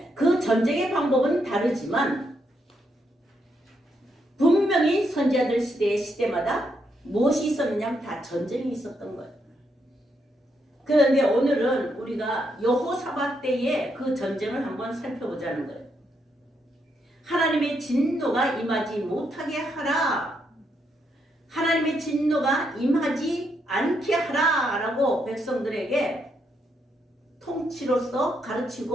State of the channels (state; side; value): normal; both; correlation 0.78